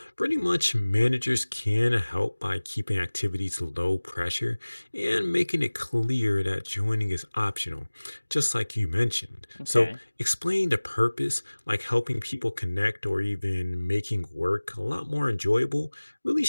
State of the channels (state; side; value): inverted; both; correlation -1.00